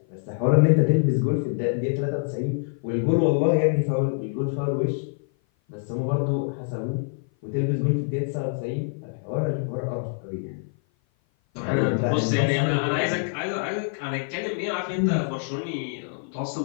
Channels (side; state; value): right; silent; 56 dB below the other